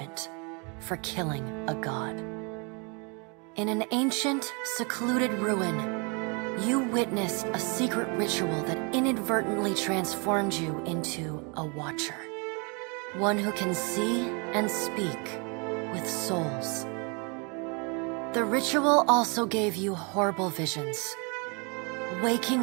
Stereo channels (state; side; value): quieter; left; 33.3 dB